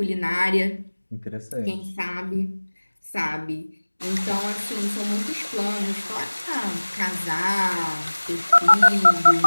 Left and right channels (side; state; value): both; inverted; correlation -1.00